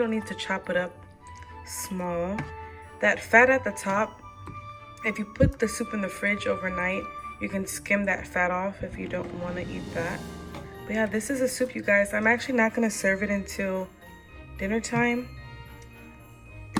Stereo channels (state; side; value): identical; both; correlation 1.00